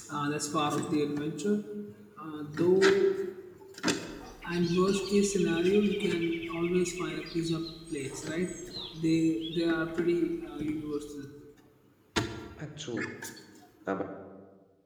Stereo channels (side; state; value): both; identical; correlation 1.00